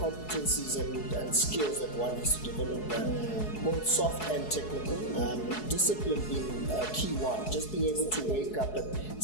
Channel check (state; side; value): late; right; 4.7 ms